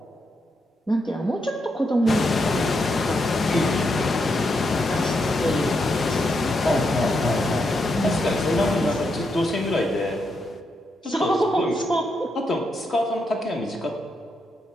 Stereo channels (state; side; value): normal; both; correlation 0.82